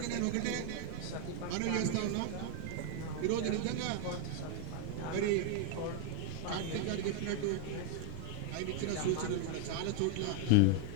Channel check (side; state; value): both; different; correlation 0.01